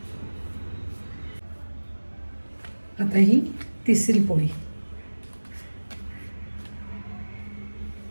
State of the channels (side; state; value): both; inverted; correlation -1.00